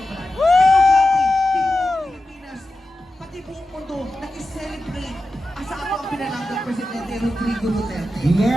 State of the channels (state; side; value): normal; both; correlation 0.92